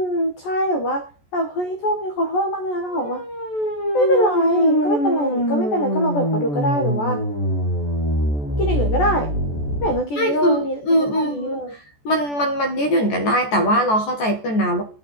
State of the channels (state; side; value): late; right; 14 ms